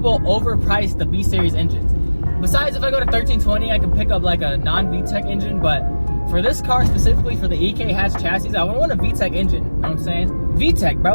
overprice the B-Series engines. Besides, if I go to 1320, I can pick up like a non-VTEC engine, but for this car specifically, for the EK hatch chassis, I would want a VTEC engine, you know what I'm saying? VTEC,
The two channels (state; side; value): inverted; both; correlation -1.00